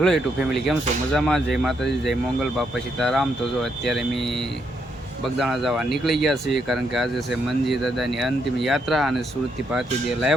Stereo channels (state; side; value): normal; both; correlation 0.77